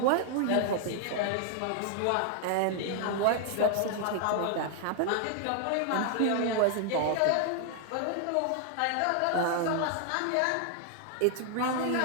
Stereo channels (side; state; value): both; different; correlation 0.00